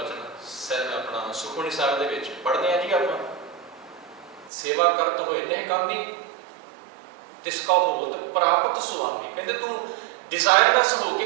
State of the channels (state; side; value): drops out; left; at 4.5 s